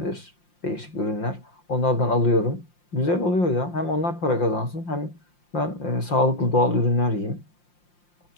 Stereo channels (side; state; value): right; late; 5.7 ms